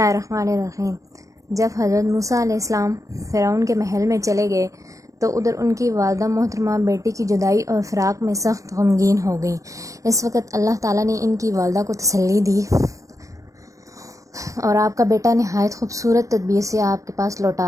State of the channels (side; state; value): left; late; 0.16 ms